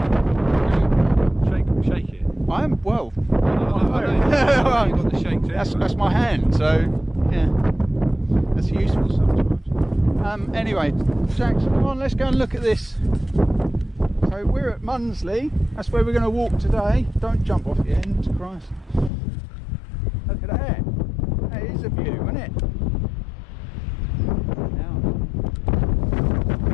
Shake it. I am well. I know. You've got the shake too. That's my hand, so yeah, that's useful sometimes. Anyway, Jackson, come on, let's go and look at this. So we're at Mundesley. That's where we're going to walk today. Don't jump off the end, Christ. Look at that. That is a view, isn't it?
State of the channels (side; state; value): right; drops out; at 19.1 s